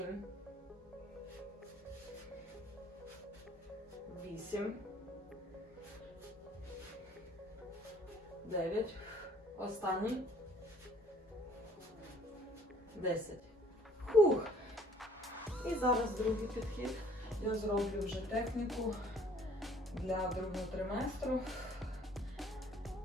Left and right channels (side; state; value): both; normal; correlation 0.57